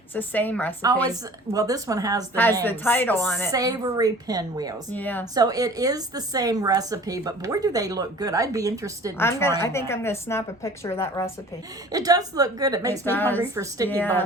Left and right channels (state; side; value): normal; both; correlation 0.46